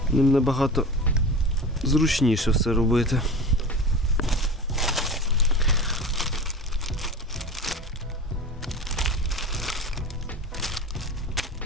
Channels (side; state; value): both; normal; correlation 0.32